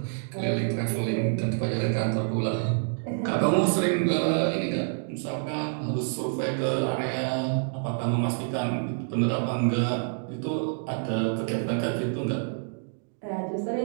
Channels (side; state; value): left; silent; 59 dB below the other